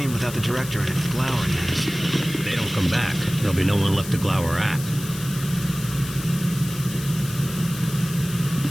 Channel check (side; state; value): left; noise; hiss, 12 dB below the sound